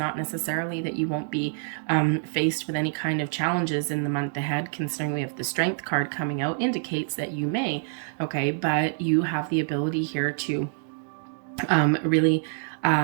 necessarily that you won't be faced with any kind of challenges in the month ahead, considering we have the Strength card coming out, indicates that you may, okay? But you have the ability here to really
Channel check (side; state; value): left; silent; 58 dB below the other